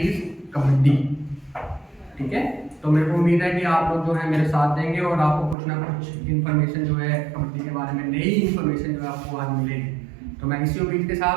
कबड्डी। ठीक है, तो मेरे को उम्मीद है कि आप लोग जो है मेरे साथ देंगे और आपको कुछ ना कुछ इन्फॉर्मेशन जो है कबड्डी के बारे में, नई इन्फॉर्मेशन जो है आपको आज मिलेगी। तो मैं इसी उम्मीद के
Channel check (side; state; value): left; drops out; at 5.6 s